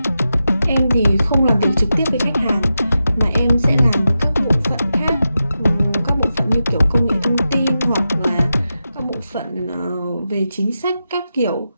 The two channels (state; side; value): inverted; both; correlation -0.90